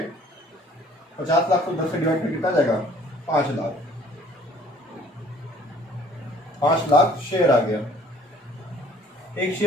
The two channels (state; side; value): normal; both; correlation 0.56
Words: 50 लाख को 10 से डिवाइड कर कितना जाएगा, 5 लाख। 5 लाख शेयर आ गया। एक